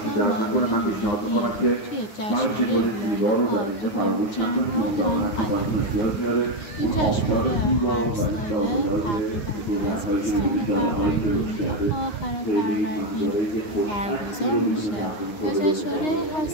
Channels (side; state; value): right; late; 9.7 ms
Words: هم توی جشنواره لاله‌ها تو پرچم‌ها با هم قدم بزنیم. این جشنواره هر ساله تقریبا از 20 فروردین تا آخر فروردین برگزار میشه و جشنواره